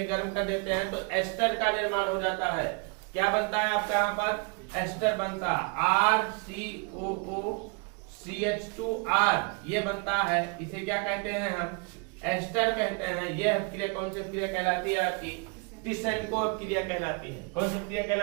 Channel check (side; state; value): left; quieter; 33.2 dB